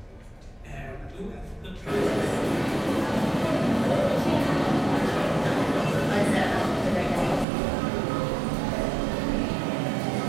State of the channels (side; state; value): left; drops out; at 7.5 s